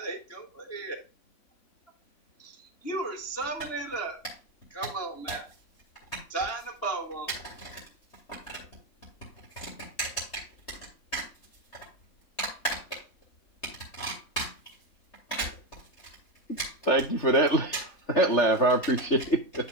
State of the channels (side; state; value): right; late; 3.2 ms